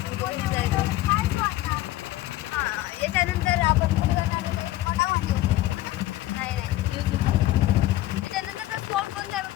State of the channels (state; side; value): quieter; right; 15.7 dB